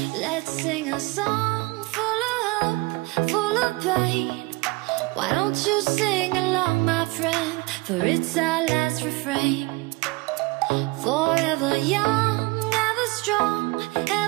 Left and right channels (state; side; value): quieter; left; 24.2 dB